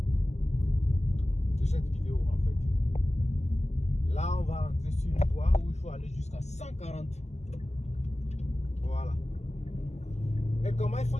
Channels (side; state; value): right; late; 0.33 ms